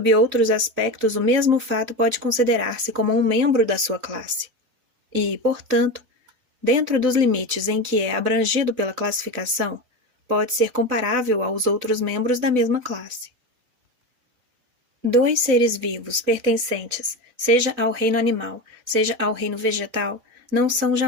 outros aspectos o mesmo fato pode considerar-se como um membro da sua classe. E, portanto, dentro dos limites em que é abrangido pela classificação, pode ser comparável aos outros membros da mesma classe. Dois seres vivos pertencentes, seja ao reino animal, seja ao reino vegetal, não são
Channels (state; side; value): late; left; 3.9 ms